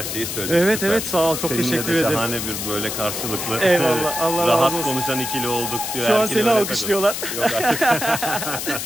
şeyi söyledik. Evet evet, sağ ol, çok Seninle teşekkür de ederim. şahane bir böyle karşılıklı. Eyvallah, Allah razı olsun. Rahat konuşan ikili olduk diyor. Şu an seni alkışlıyorlar. Yok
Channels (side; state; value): left; noise; hiss, 5 dB below the sound